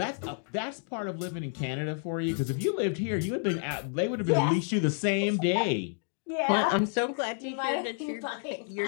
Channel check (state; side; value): silent; right; 58 dB below the other